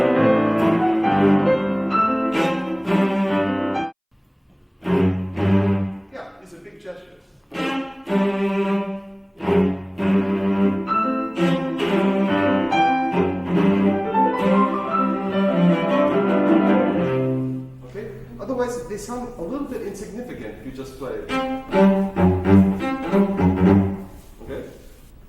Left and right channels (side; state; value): both; identical; correlation 1.00